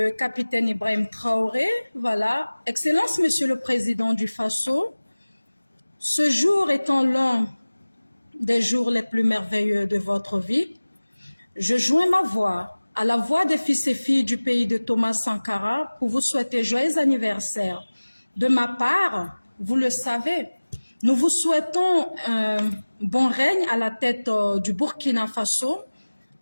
capitaine Ibrahim Traoré. Voilà. Excellence, Monsieur le Président du Faso, ce jour étant l'un des jours les plus merveilleux de votre vie, je joins ma voix à la voix des fils et filles du pays de Thomas Sankara pour vous souhaiter joyeux anniversaire. De ma part, vous le savez, nous vous souhaitons un bon règne à la tête du Burkina Faso,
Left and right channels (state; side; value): inverted; both; correlation -1.00